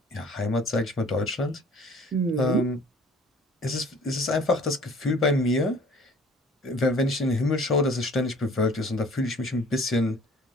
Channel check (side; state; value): both; normal; correlation 0.51